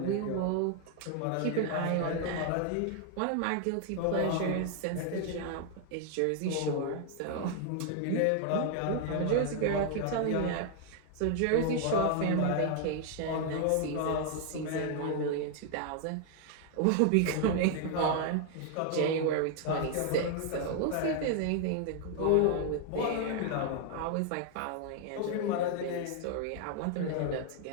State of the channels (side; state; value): both; different; correlation 0.00